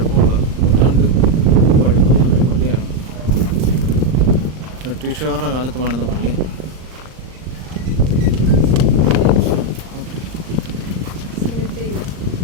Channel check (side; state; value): left; late; 39 ms